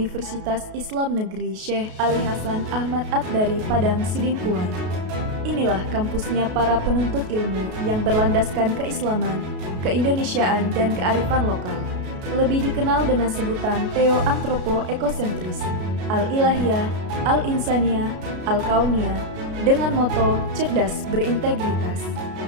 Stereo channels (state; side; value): late; left; 33 ms